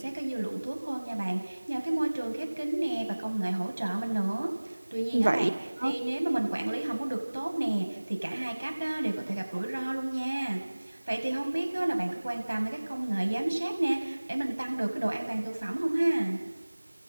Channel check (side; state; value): both; inverted; correlation -1.00